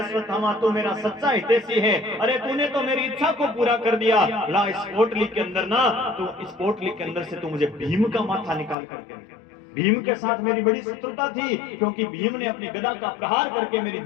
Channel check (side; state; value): right; drops out; at 8.8 s